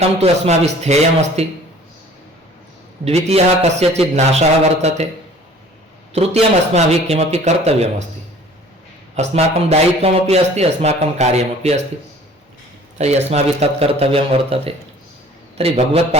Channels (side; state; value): both; normal; correlation 0.50